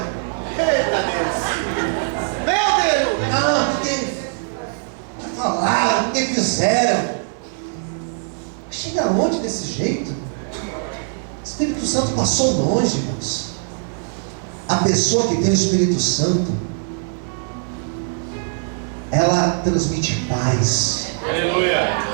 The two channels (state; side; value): silent; left; digital silence